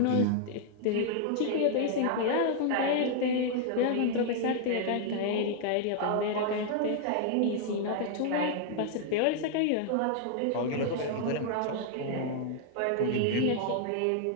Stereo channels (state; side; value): different; both; correlation 0.00